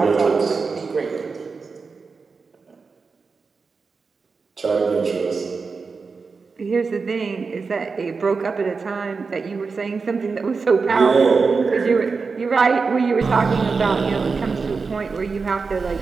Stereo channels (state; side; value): quieter; left; 4.7 dB